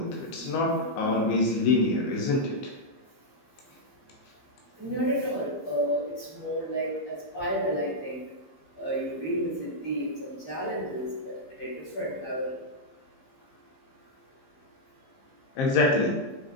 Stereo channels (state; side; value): late; right; 15 ms